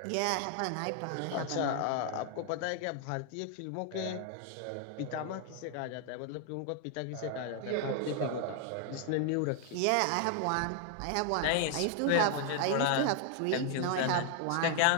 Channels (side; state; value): both; different; correlation 0.00